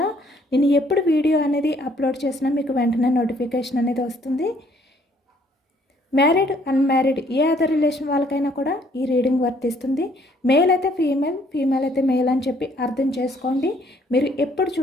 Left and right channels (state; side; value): normal; both; correlation 0.64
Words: నేను ఎప్పుడు వీడియో అనేది అప్లోడ్ చేసినా మీకు వెంటనే నోటిఫికేషన్ అనేది వస్తుంది. మ్యారీడ్, అన్మ్యారీడ్ ఏ అదర్ రిలేషన్ వాళ్ళకైనా కూడా ఈ రీడింగ్ వర్తిస్తుంది. మేల్ అయితే ఫీమేల్, ఫీమేల్ అయితే మేల్ అని చెప్పి అర్థం చేసుకోండి. మీరు ఎప్పుడు